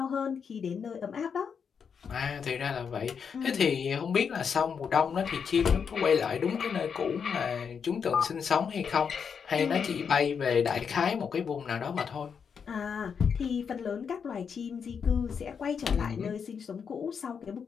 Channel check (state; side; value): quieter; right; 6.6 dB